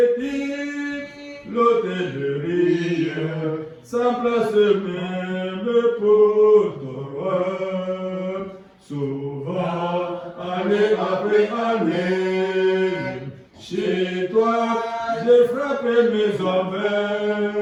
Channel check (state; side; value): identical; both; correlation 1.00